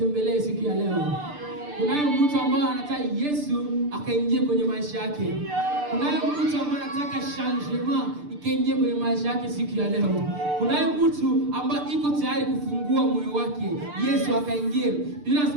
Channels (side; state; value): left; late; 6.8 ms